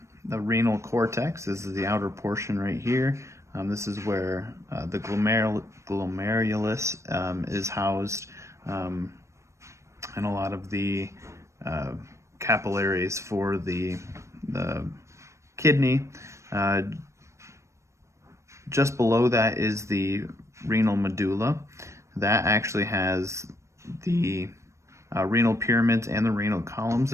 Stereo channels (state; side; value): late; left; 0.14 ms